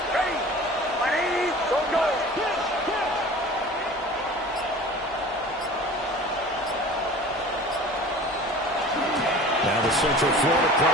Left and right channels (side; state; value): both; normal; correlation 0.41